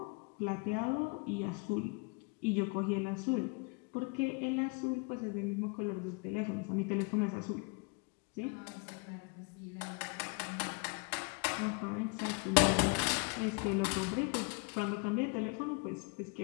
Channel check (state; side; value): quieter; right; 32.3 dB